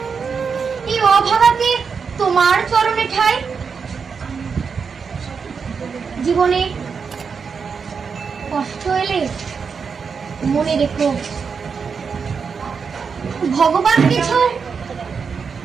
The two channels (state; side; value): quieter; left; 5.8 dB